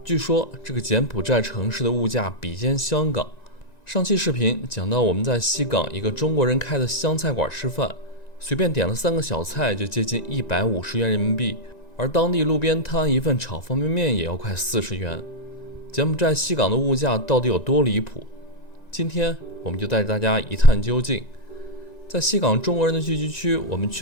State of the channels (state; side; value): late; right; 1.9 ms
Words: 据说这个柬埔寨城市的物价比肩香港。上期视频讲到我们在西港一个中国人开的湘菜馆吃饭，随便点了3个小菜就接近150元人民币，而当地路边摊一份炒方便面也要快40元。柬埔寨西港的物价到底有多离谱？今天我们就带着大家一探究竟。在西港中国人的聚集区，我们